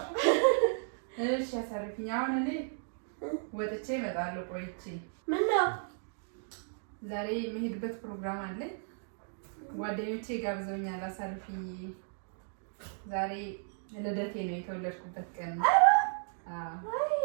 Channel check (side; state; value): left; silent; digital silence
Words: እሺ አሳርፊኝ። አሁን እኔ ወጥቼ እመጣለሁ ቆይቼ። ምነው? ዛሬ የምሄድበት ፕሮግራም አለኝ። ጓደኞቼ ጋብዘውኛል። አሳርፊኝ። ዛሬ ልደቴ ነው፣ የተወለድኩበት ቀን ነው